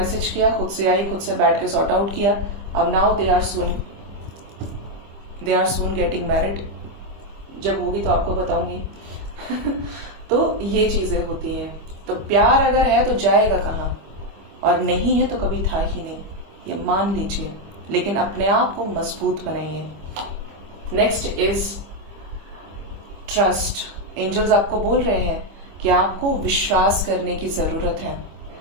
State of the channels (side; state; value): left; late; 25 ms